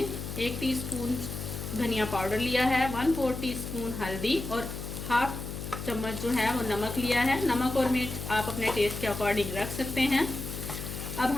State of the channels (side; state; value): left; noise; hum, 7 dB below the sound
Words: 1 टीस्पून धनिया पाउडर लिया है, 1/4 टीस्पून हल्दी और हाफ चम्मच जो है वो नमक लिया है। नमक और मिर्च आप अपने टेस्ट के अकॉर्डिंग रख सकते हैं। अब